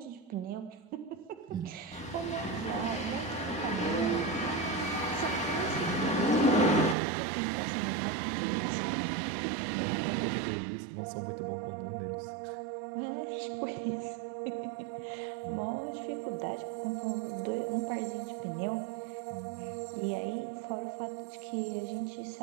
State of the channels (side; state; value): left; drops out; at 7.0 s